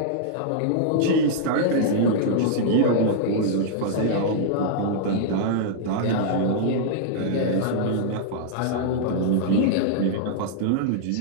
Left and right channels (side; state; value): both; different; correlation -0.01